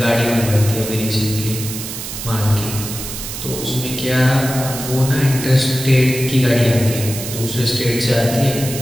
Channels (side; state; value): right; noise; hiss, 8 dB below the sound